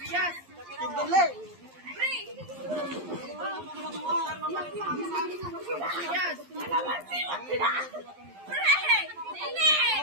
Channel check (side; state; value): left; late; 11 ms